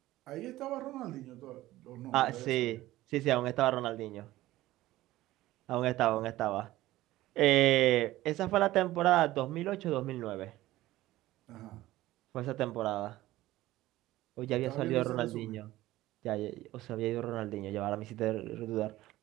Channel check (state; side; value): quieter; left; 16.4 dB